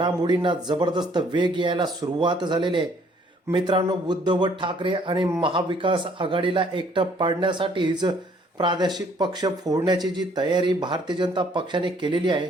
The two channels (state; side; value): normal; both; correlation 0.62